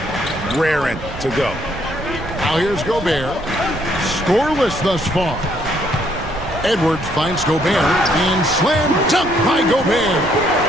raring to go. Now here's Gobert. Scoreless thus far. Edwards finds Gobert and slam dunk by Gobert.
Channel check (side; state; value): right; noise; rumble, 12 dB below the sound